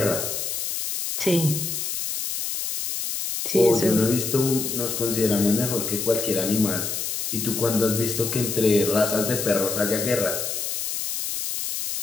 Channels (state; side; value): noise; left; hiss, 3 dB below the sound